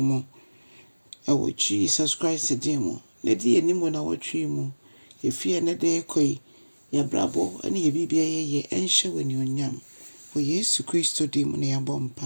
Ewo Jesus Christ din mu. Ne di enimu na wotwe mu. Efie ne de koi ya brabo ani ye bibia ye enhye wani onyam. For Yesu Christo din mu ne yabɔ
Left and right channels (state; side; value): inverted; both; correlation -1.00